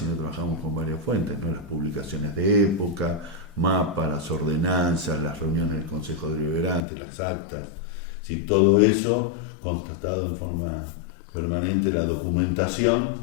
trabajamos con varias fuentes, ¿no? Las publicaciones de época, mapas, las ordenanzas, las reuniones del Consejo Deliberante, las actas, ¿sí? Todo eso constatado en forma permanente, la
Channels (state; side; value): drops out; right; at 6.8 s